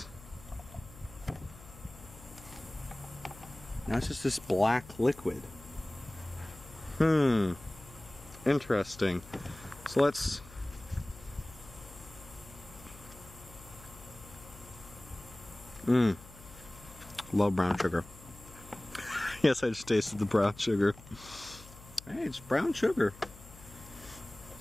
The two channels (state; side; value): noise; left; hum, 19 dB below the sound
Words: Now it's just this black liquid. Interesting. So let's... Love brown sugar. Yes, I just tasted the brown sugar. Hey, it's brown sugar.